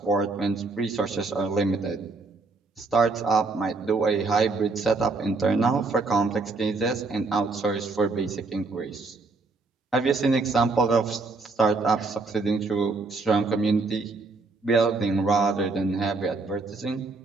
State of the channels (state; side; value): quieter; left; 3.7 dB